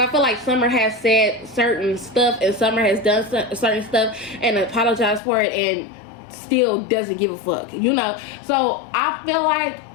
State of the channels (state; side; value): drops out; right; at 5.2 s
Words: feel like Summer has said certain stuff and Summer has done certain stuff and apologized for it and still doesn't give a fuck, you know. So I feel like